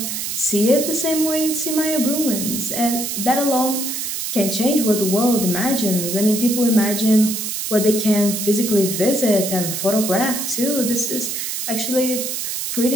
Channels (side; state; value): right; noise; hiss, 3 dB below the sound